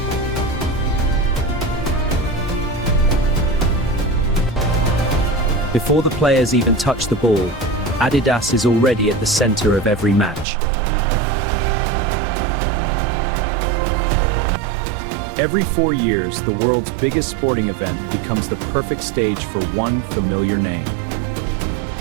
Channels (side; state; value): left; drops out; at 10.5 s